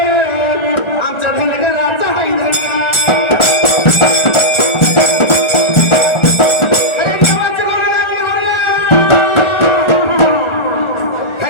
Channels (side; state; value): right; late; 1.4 ms